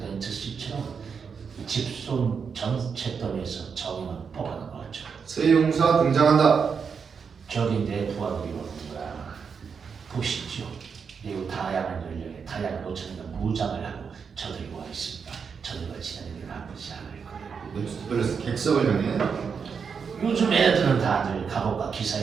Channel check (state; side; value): quieter; left; 6.1 dB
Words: 씨처럼 집손 전체더미에서 정의만 뽑아낸 거죠. 새 용사 등장한다. 저기 내 부하들이 오는구나. 보시죠. 매우 다양한 연령의 다양한 옷차림과 무장을 하고 저들이 와 있습니다. 저들과 지내는 게 나쁘지 않을 거예요. 멜로스 객석을 향해 요즘 애들은 다들 갑옷과